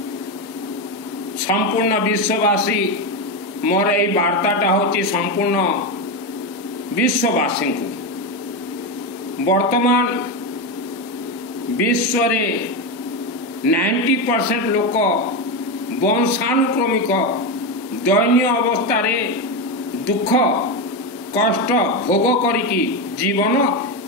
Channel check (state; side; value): normal; both; correlation 0.12